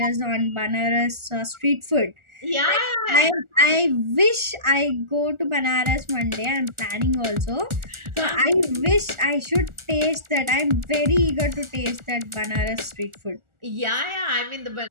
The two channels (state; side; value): late; left; 1.4 ms